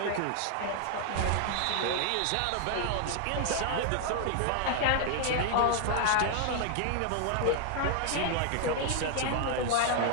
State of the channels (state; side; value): different; both; correlation 0.00